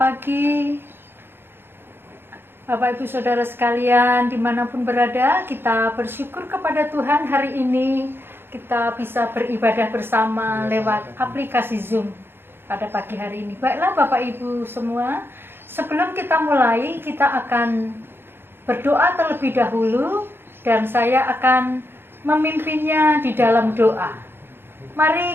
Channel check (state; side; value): late; left; 0.11 ms